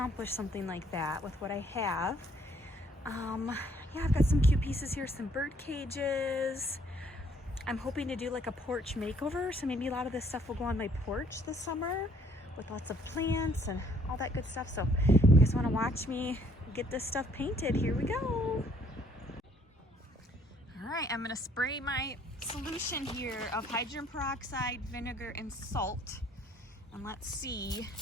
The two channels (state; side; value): normal; both; correlation 0.63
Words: something like that with what I have. Yeah, I've got some cute pieces here, some bird cages. I'm hoping to do like a porch makeover, so maybe a lot of this stuff will go on my porch this summer with lots of plants and all that good stuff. So if you guys want to watch me get this stuff painted, here we go. All right, I'm gonna spray my solution here of hydrogen peroxide, vinegar, and salt. And let's see.